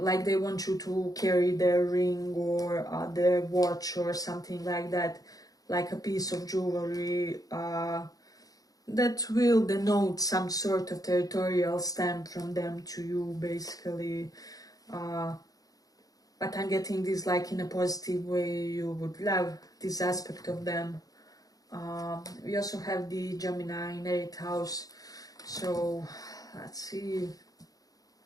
want you to carry their ring or their watch or something like that, like a piece of jewelry that will denote some sort of territorial stamp from them to you, basically. But I'm getting this like in a positive way. You would love this aspect of them. We also have the Gemini in 8th house. So let's see.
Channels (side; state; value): right; late; 0.18 ms